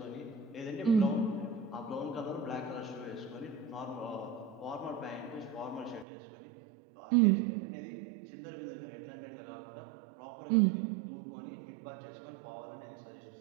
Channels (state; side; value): drops out; left; at 6.1 s